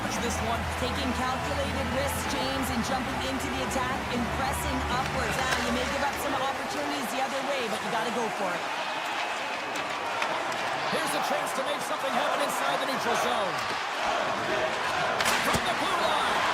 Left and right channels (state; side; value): identical; both; correlation 1.00